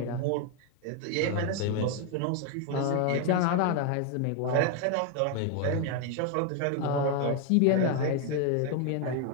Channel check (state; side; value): different; both; correlation 0.01